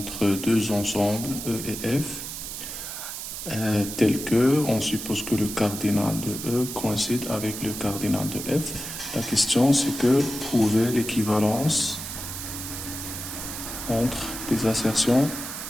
deux ensembles E et F, tel que on suppose que le cardinal de E coïncide avec le cardinal de F. La question c'est que prouver l'équivalence entre les assertions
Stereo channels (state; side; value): noise; right; hiss, 7 dB below the sound